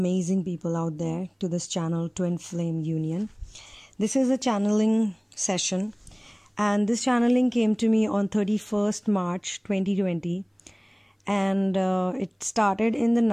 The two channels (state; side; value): identical; both; correlation 1.00